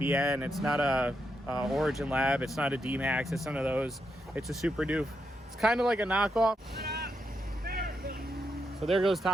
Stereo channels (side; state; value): both; normal; correlation 0.83